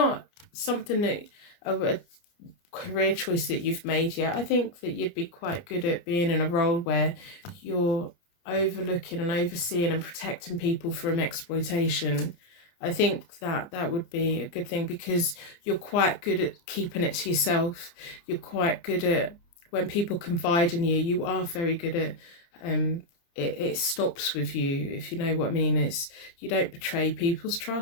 something that a career choice that you've made yet, I think that you'd be quite good at being in a role where you're overlooking and overseeing and protecting people from exploitation. I think that that would be a good thing, because you're quite good at keeping it to yourself. You're quite good at, when people confide in you, you are very good at it stops with you, if you know what I mean. It's, you don't betray people's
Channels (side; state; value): right; late; 29 ms